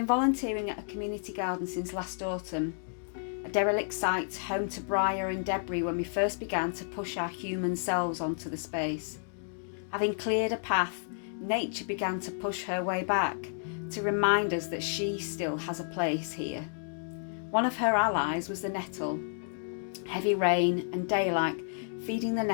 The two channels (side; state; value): right; silent; digital silence